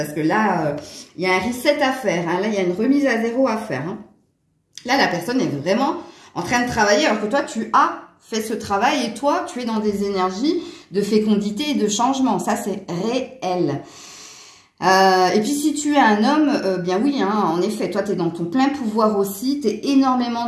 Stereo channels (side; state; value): both; identical; correlation 1.00